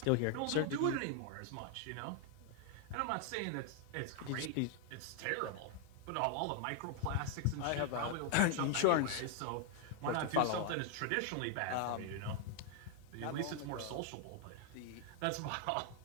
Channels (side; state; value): both; different; correlation 0.00